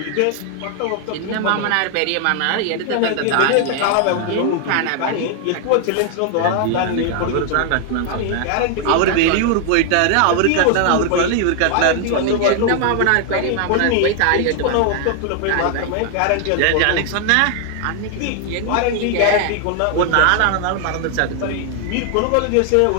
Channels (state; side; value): different; both; correlation 0.00